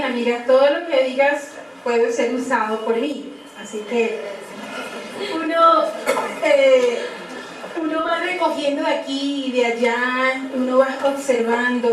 amigas, todo lo que digas puede ser usado por mí, así que uno va recogiendo de aquí y de allá, uno va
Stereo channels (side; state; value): both; identical; correlation 1.00